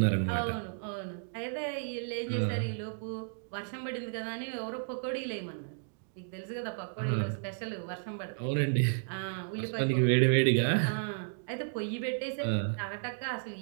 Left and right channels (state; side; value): silent; left; digital silence